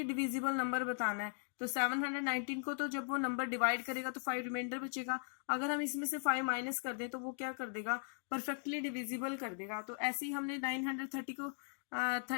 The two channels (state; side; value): silent; right; 52 dB below the other